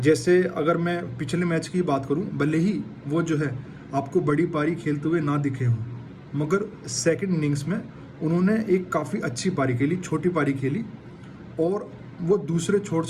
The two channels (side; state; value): both; identical; correlation 1.00